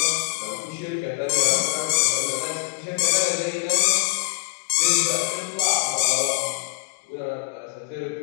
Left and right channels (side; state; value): right; quieter; 24.8 dB